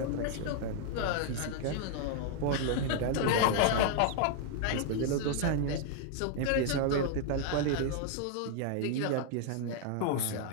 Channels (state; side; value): different; both; correlation 0.00